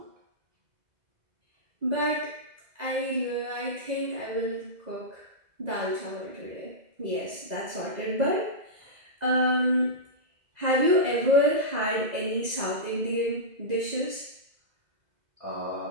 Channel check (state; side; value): late; left; 2.0 ms